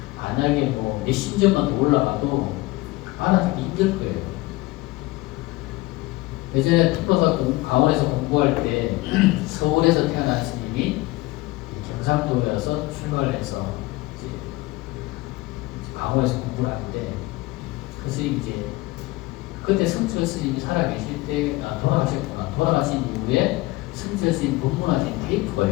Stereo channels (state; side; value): quieter; right; 20.4 dB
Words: 만약에 뭐 몇십 년만 더 올라가도 알아듣기 힘들 거예요. 예전에 특허사 강원에서 공부할 때 서울에서 태어난 스님이 경상도여서 출가를 해서 이제 강원에서 공부를 하는데 그 스님 이제 그때 성철 스님이 살아계실 때 돌아가셨구나. 돌아가신 이후에 성철 스님 법문하신 테이프가